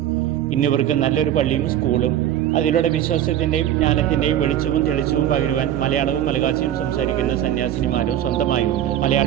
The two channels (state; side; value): quieter; left; 11.2 dB